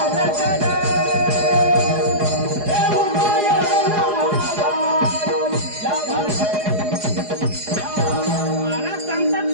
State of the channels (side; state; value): left; late; 4.8 ms